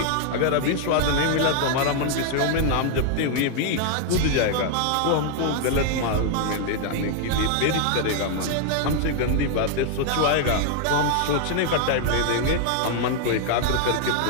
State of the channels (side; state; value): both; different; correlation 0.00